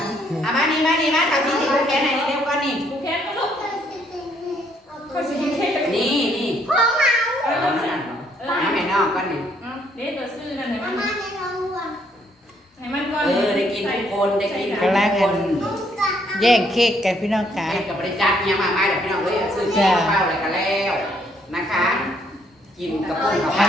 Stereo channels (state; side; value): normal; both; correlation 0.69